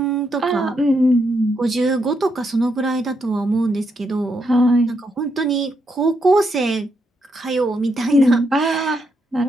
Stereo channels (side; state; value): both; normal; correlation 0.79